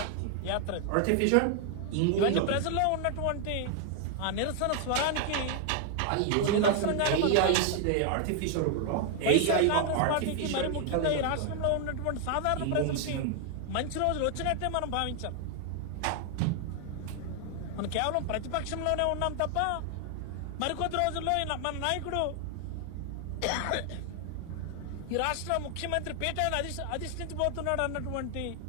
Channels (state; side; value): different; both; correlation 0.00